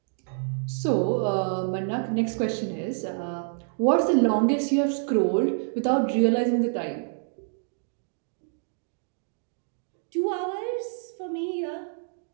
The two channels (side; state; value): left; silent; 60 dB below the other